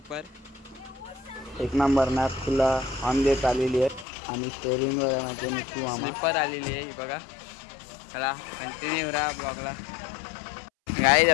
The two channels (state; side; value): drops out; right; at 4.0 s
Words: एक नंबर नागपूरला ऑन देत आलेली आहे। आणि स्टेअरिंगवर माझे निकू मामा स्लीपर आलेली आहे, ही बघा। चला कंटिन्यू राहा ब्लॉगला। गाईज